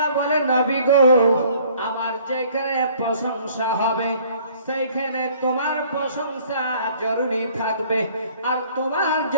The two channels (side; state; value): both; inverted; correlation -0.56